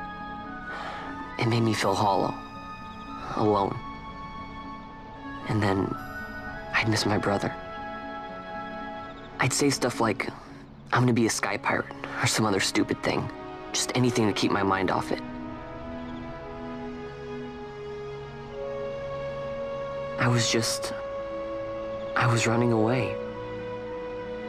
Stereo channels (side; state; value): both; identical; correlation 1.00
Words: It made me feel hollow, alone. And then, I'd miss my brother. I'd say stuff like, I'm gonna be a sky pirate, or some other stupid thing. Just anything to keep my mind off it. I was running away.